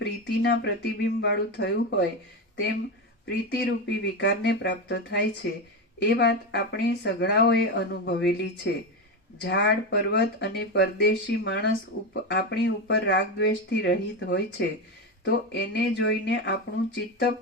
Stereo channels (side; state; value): both; normal; correlation 0.15